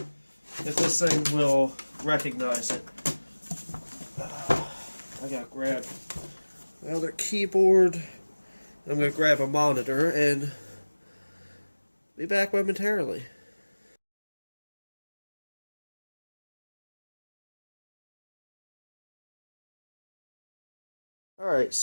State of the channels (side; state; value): both; inverted; correlation -1.00